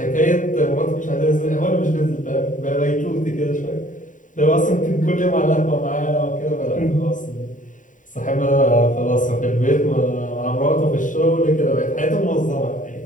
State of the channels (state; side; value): late; right; 0.37 ms